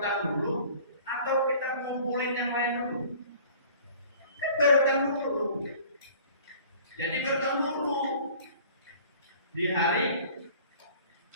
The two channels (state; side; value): inverted; both; correlation -0.49